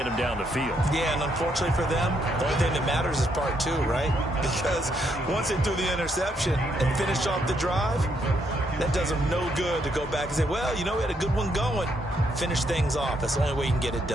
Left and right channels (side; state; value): both; normal; correlation 0.74